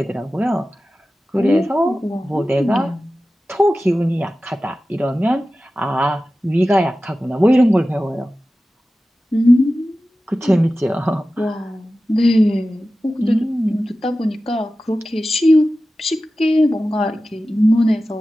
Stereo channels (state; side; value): normal; both; correlation 0.95